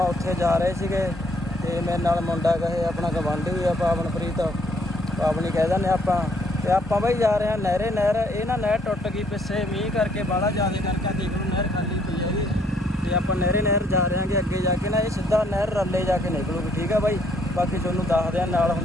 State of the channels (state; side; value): normal; both; correlation 0.67